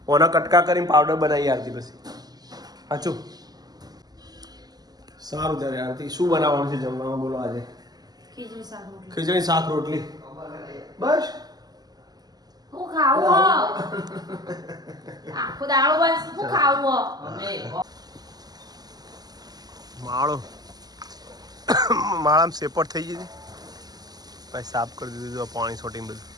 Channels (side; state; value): left; late; 0.19 ms